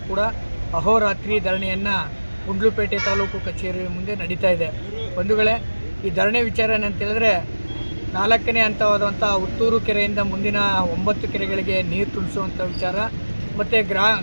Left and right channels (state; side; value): inverted; both; correlation -1.00